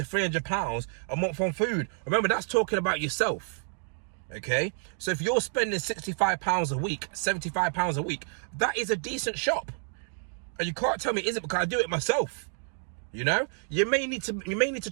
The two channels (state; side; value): silent; left; 55 dB below the other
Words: £300 a month on food. Remember, that's talking about yourself. Okay, so if you're spending £65 a week, £75 a week, that is a decent shop. And you can't tell me it isn't, because I do it myself. You know, you may need to